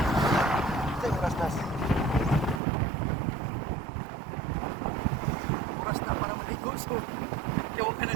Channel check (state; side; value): drops out; left; at 2.6 s